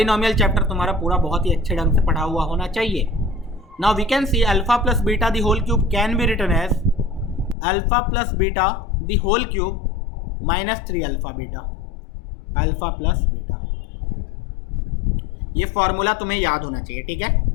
चैप्टर तुम्हारा पूरा बहुत ही अच्छे ढंग से पढ़ा हुआ होना चाहिए। Now we can see alpha plus beta the whole cube can be written as alpha plus beta the whole cube -3 alpha beta, alpha plus beta, ये फॉर्मूला तुम्हें याद होना चाहिए, ठीक है।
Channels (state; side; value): drops out; right; at 7.6 s